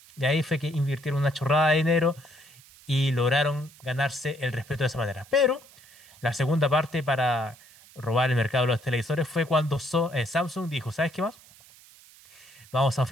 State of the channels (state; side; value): noise; right; hiss, 24 dB below the sound